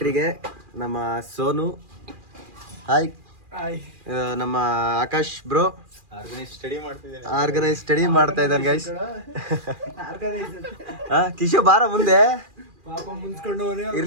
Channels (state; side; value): late; left; 2.4 ms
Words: ನಮ್ಮ ಸೋನು, ಹಾಯ್. ನಮ್ಮ ಆಕಾಶ್ ಬ್ರೋ ಆರ್ಗನೈಸ್ ಸ್ಟಡಿ ಮಾಡ್ತಾ ಇದ್ದಾನೆ ಗೈಸ್. ಕಿಶೋ ಬಾರ ಮುಂದೆ,